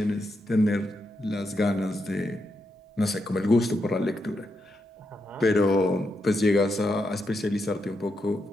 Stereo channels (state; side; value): normal; both; correlation 0.83